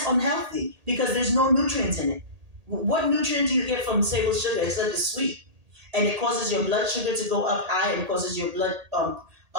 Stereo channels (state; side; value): late; left; 1.8 ms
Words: unhealthy because there's no nutrients in it. What nutrient do you get from table sugar? It's that it's sweet, and it causes your blood sugar to go up high, and it causes your blood